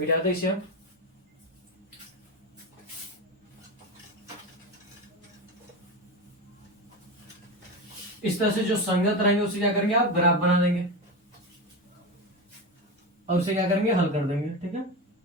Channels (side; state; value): both; normal; correlation 0.19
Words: इसे हम। इस तरह से जो संगत रहेंगे उसे क्या करेंगे आप ग्राफ बना देंगे, और उसे क्या करेंगे हल कर देंगे, ठीक है।